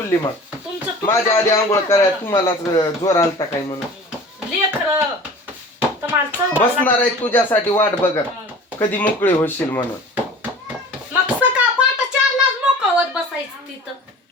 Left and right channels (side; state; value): both; normal; correlation 0.41